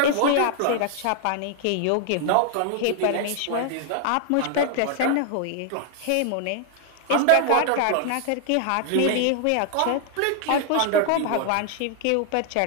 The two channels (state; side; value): different; both; correlation 0.00